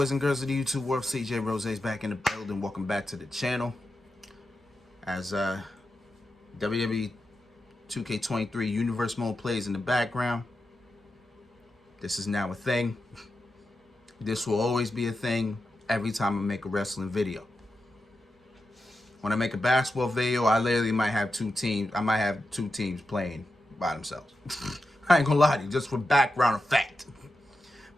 and girls of the YouTube world, CJ Rose is back in the building. Welcome back to the channel. As WWE 2K23 Universe Mode plays in the background, this is now a thing. This will always be a thing every time I make a wrestling video. When I make a basketball video, I literally might have two teams. I might have two teams playing by themselves. I ain't gonna lie to you, just for background effect.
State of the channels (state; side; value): normal; both; correlation 0.89